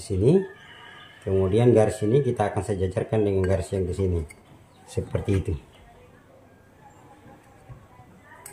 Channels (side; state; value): both; identical; correlation 1.00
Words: sini. Kemudian garis ini kita akan sejajarkan dengan garis yang di sini. Seperti itu.